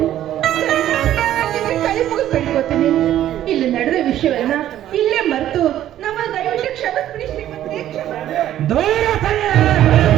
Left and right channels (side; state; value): left; quieter; 12.2 dB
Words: ಕೈ ಮುಗಿದು ಬೇಡ್ಕೋತೀನಿ. ಇಲ್ಲಿ ನಡೆದ ವಿಷಯವನ್ನ ಇಲ್ಲೇ ಮರೆತು ನಮ್ಮ ದಯವಿಟ್ಟು ಕ್ಷಮಿಸ್ಬಿಡಿ ಶ್ರೀಮಂತ್ರಿ, ದೂರ ಸರಿಯ